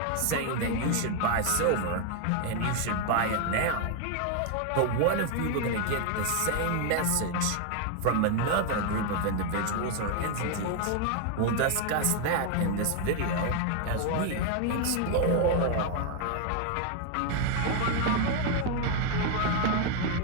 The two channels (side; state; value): both; different; correlation 0.00